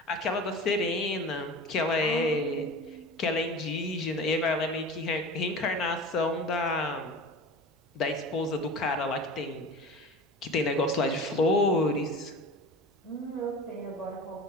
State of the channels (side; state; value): both; normal; correlation 0.36